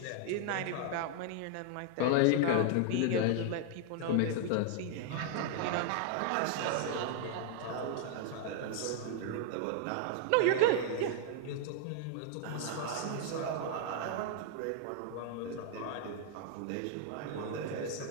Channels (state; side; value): different; both; correlation 0.00